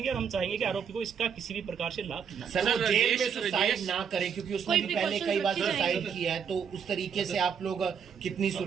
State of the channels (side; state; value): left; quieter; 7.1 dB